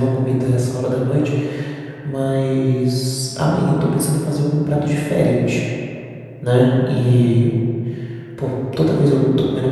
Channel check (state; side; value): identical; both; correlation 1.00